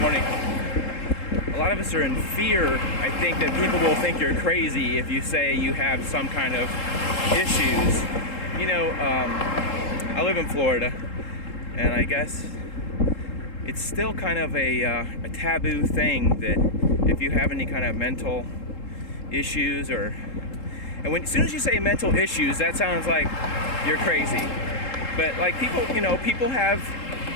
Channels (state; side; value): late; right; 3.7 ms